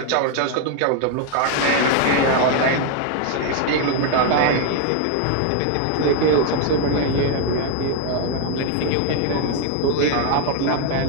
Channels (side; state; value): both; different; correlation 0.01